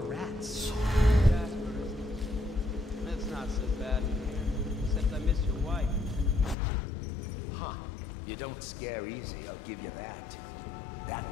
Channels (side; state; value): right; drops out; at 6.6 s